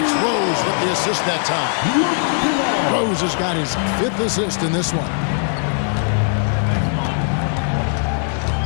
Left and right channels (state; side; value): silent; right; 56 dB below the other